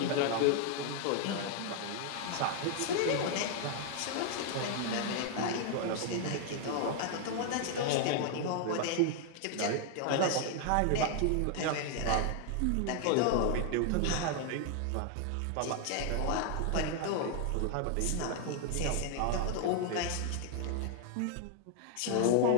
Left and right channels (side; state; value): both; different; correlation 0.00